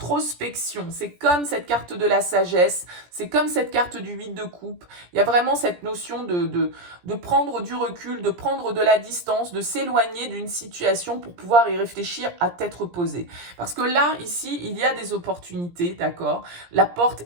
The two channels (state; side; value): late; left; 17 ms